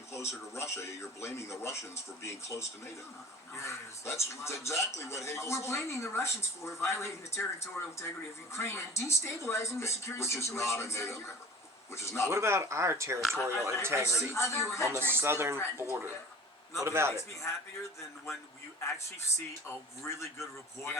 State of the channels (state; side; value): normal; both; correlation 0.41